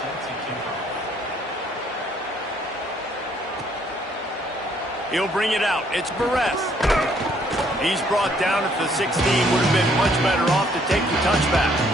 He'll bring it out. It's Barres. He's brought down at the 16. Would have been much better off to take the touchback.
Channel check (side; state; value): both; normal; correlation 0.65